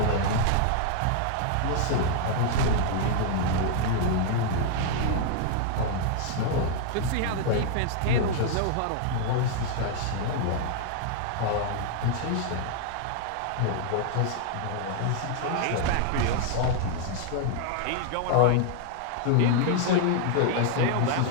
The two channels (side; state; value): both; different; correlation 0.00